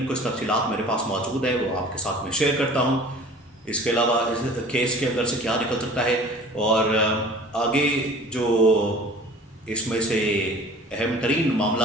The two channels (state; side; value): normal; both; correlation 0.45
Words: कुछ तफसीलात मेरे पास मौजूद है, वो आपके साथ में शेयर करता हूँ। इसके अलावा इस केस के अंदर से क्या निकल सकता है और आगे जो इसमें से अहम तरीन